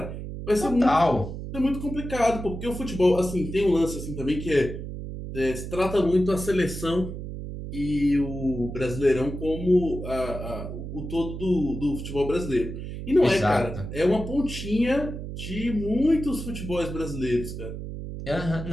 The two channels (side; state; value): right; noise; hum, 8 dB below the sound